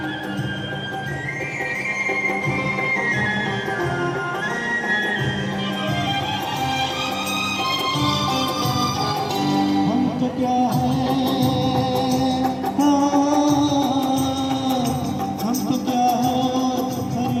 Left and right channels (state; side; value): identical; both; correlation 1.00